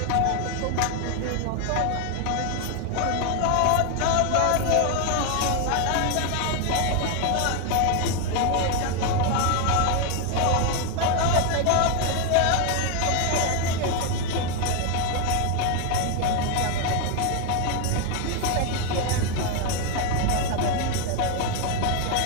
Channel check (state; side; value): different; both; correlation 0.01